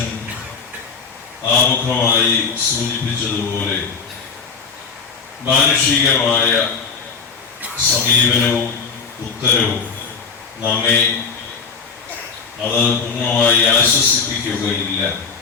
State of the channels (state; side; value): quieter; right; 5.4 dB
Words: ആമുഖമായി സൂചിപ്പിച്ചതുപോലെ മാനുഷികമായ സമീപനവും ഉത്തരവും നമ്മെ അത് പൂർണ്ണമായി ആശ്വസിപ്പിക്കുകയില്ല.